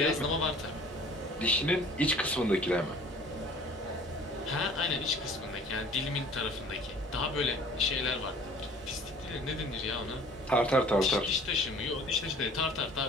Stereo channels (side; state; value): both; normal; correlation 0.50